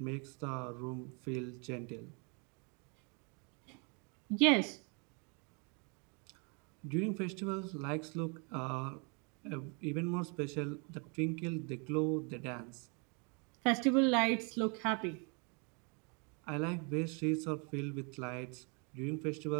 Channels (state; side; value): quieter; left; 34.7 dB